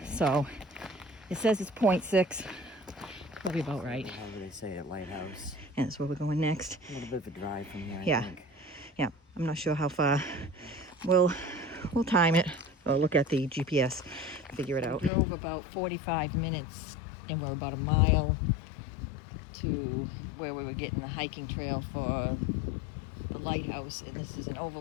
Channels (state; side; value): drops out; right; at 15.1 s